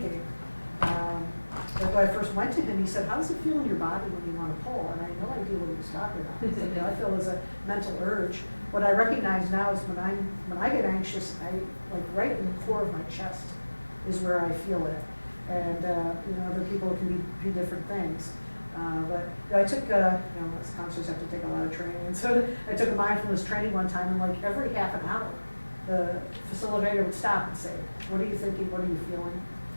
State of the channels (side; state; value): both; inverted; correlation -1.00